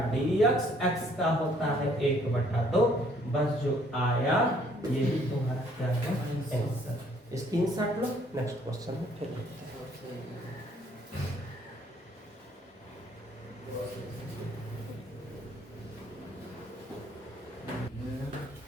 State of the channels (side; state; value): both; normal; correlation 0.63